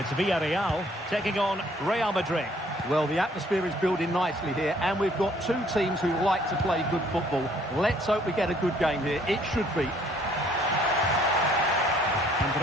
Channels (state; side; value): normal; both; correlation 0.62